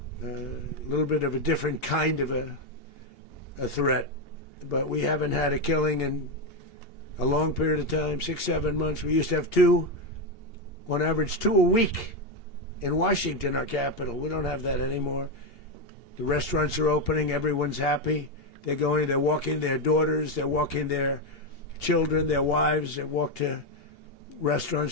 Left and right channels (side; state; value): right; late; 2.8 ms